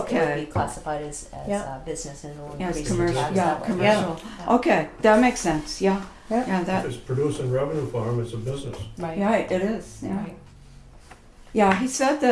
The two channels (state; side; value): identical; both; correlation 1.00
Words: be classified as Yeah. business, and it'll Yeah, it's increase the commercial, tax yeah, that way. commercial. Yeah. Okay, that makes sense, yeah. Yeah. Yeah, If that, it's producing revenue for them, it's a business. Right. yeah, it is, yeah. Right. Yeah, he said